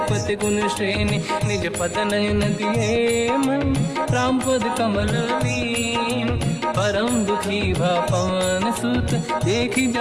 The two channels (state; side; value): identical; both; correlation 1.00